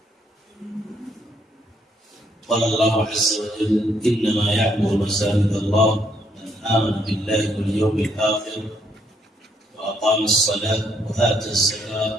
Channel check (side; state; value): both; normal; correlation 0.71